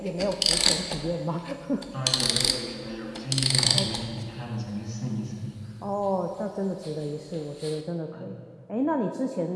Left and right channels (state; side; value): identical; both; correlation 1.00